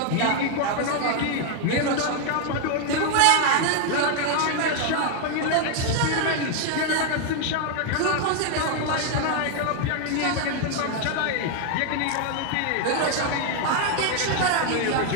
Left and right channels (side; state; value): both; different; correlation 0.00